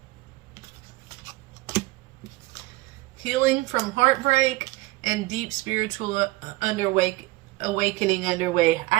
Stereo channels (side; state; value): left; quieter; 20.2 dB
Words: Healing from heartbreak and deep spiritual awakening underway.